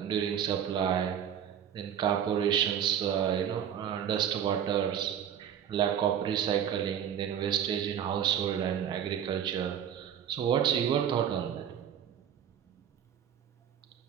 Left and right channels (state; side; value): quieter; left; 9.2 dB